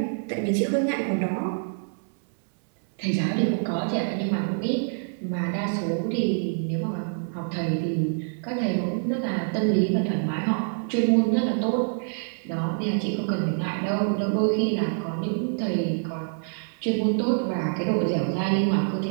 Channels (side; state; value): left; silent; digital silence